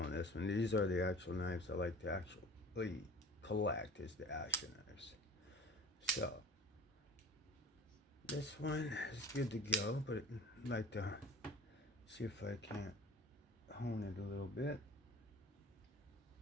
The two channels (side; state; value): both; normal; correlation 0.42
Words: this one. These are the actual knives I like to actually collect, is the Asher knives. So this one is good to go, but I'd like to see if I can't hone it a little bit.